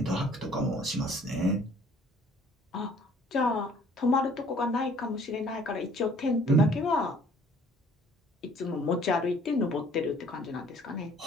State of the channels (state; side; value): normal; both; correlation 0.57